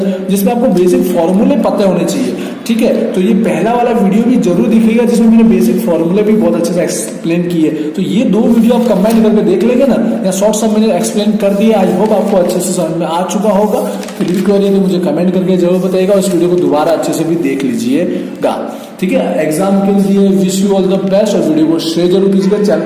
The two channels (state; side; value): identical; both; correlation 1.00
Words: जिसमें आपको बेसिक फॉर्मूले पता होने चाहिए, ठीक है। तो ये पहला वाला वीडियो भी जरूर दिखेगा जिसमें मैंने बेसिक फॉर्मूले भी बहुत अच्छे से एक्सप्लेन किए। तो ये 2 वीडियो आप कंबाइन करके देख लेंगे ना, या शॉर्ट सब मैंने एक्सप्लेन कर दिया। आई होप आपको अच्छे से समझ में आ चुका होगा। फिर भी क्वेरी तो मुझे कमेंट करके जरूर बताइएगा, उस वीडियो को दोबारा अच्छे से भी देख लीजिएगा, ठीक है। एग्जाम के लिए wish you all the best, और वीडियो को शेयर जरूर कीजिएगा, चैनल